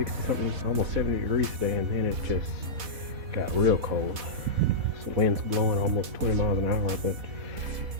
something, almost 70 degrees today, and then it just got real cold. So wind's blowing almost 20 miles an hour, but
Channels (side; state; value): left; late; 4.1 ms